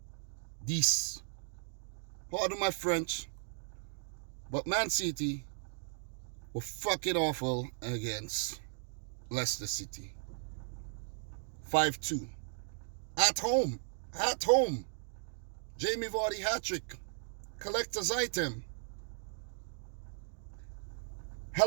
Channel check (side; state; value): left; silent; digital silence